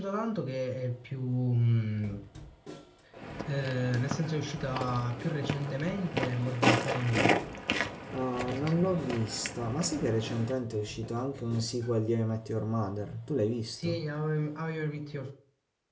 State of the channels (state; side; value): identical; both; correlation 1.00